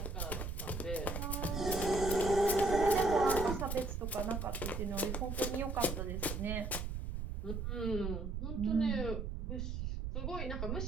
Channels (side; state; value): right; noise; rumble, 3 dB below the sound